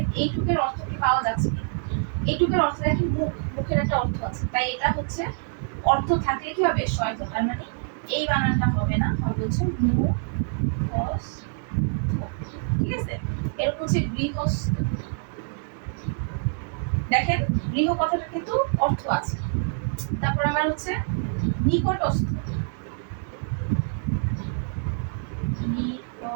এই টুকের অর্থ কি পাওয়া যাচ্ছে কি, এই টুকের অর্থ দেখেন মুখ, মুখের একটা অর্থ আছে, তাই এটা হচ্ছে অর্থ থাকলে কি হবে শয়থ, তার মানে এই বানানটা হবে না, হবে হচ্ছে মুখ, ঠিক আছে। এরকম হচ্ছে গৃহস্থ, দেখেন গৃহ কথাটা কিন্তু অর্থ আছে। তারপর আমার হচ্ছে নিকটস্থ,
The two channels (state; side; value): silent; left; digital silence